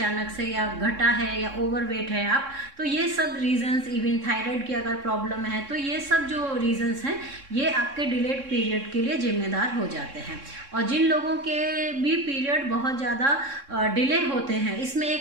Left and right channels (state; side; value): late; left; 3.6 ms